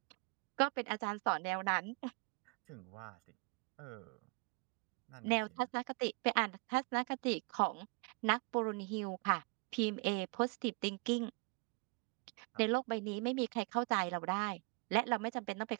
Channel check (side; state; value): left; quieter; 31.4 dB